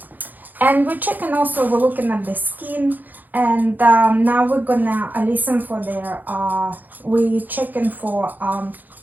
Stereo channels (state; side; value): late; left; 0.085 ms